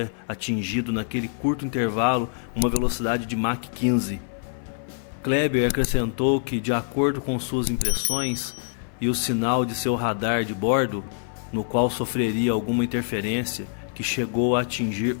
atingido naquele curto intervalo uma velocidade de Mach 15. Kleber acrescentou que, de acordo com suas impressões e o sinal de seu radar de bordo, no qual sofreria alguma interferência que chegou a atingir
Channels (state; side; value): silent; right; 56 dB below the other